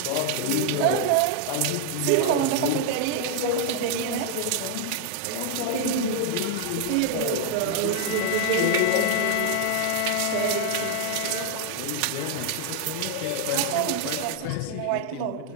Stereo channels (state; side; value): different; both; correlation 0.00